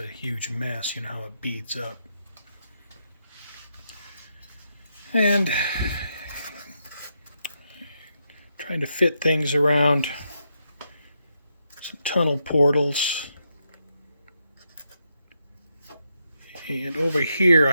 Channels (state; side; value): inverted; both; correlation -0.81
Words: huge mess. You know how it beads up. And trying to fit things around some tunnel portals. And over here